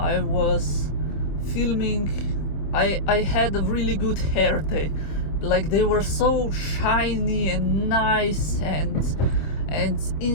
was filming, I had a really good hair day. Like, they were so shiny and nice and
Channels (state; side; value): late; right; 25 ms